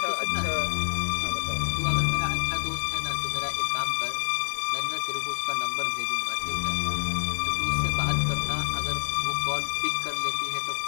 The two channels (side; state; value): right; silent; digital silence